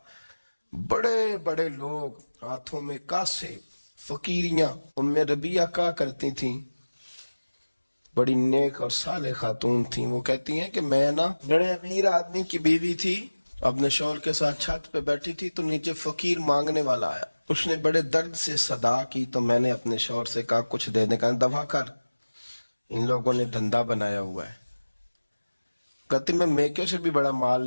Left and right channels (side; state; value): both; inverted; correlation -1.00